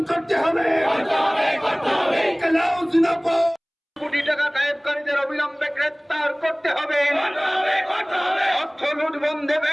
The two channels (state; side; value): identical; both; correlation 1.00